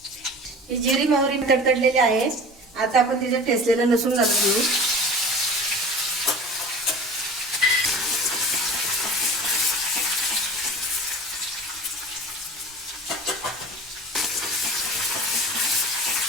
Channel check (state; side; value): normal; both; correlation 0.39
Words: ही जिरी मोहरी तडतडलेली आहे। आता आपण तिच्यात ठेचलेलं लसूण घालून घेऊ।